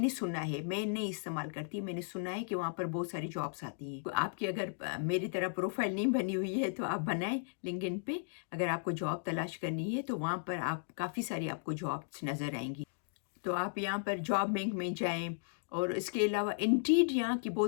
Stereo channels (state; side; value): silent; right; digital silence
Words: سنا ہے، میں نہیں استعمال کرتی، میں نے سنا ہے کہ وہاں پر بہت ساری جابس آتی ہیں۔ آپ کی اگر میری طرح پروفائل نہیں بنی ہوئی ہے تو آپ بنائیں لنکڈ ان پہ، اگر آپ کو جاب تلاش کرنی ہے تو وہاں پر آپ کافی ساری آپ کو جابس نظر آئیں گی۔ تو آپ یہاں پر جاب بینک میں جائیں، اور اس کے علاوہ انڈیڈ یہاں کی